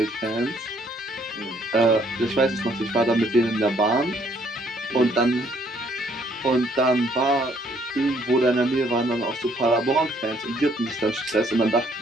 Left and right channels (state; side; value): normal; both; correlation 0.66